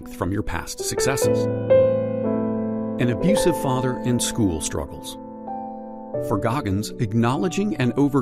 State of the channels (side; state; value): both; identical; correlation 1.00